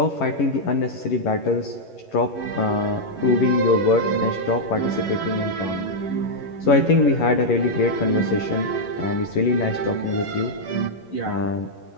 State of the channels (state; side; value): late; right; 11 ms